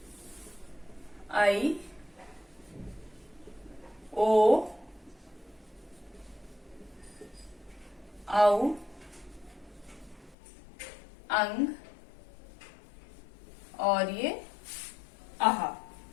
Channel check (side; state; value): right; drops out; at 10.4 s